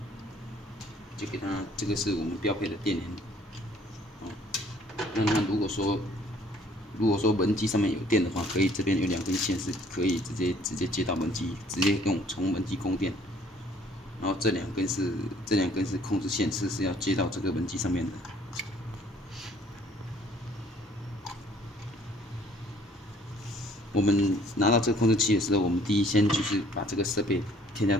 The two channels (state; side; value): normal; both; correlation 0.58